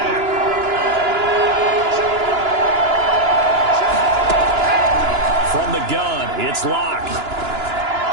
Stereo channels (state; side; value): late; left; 2.9 ms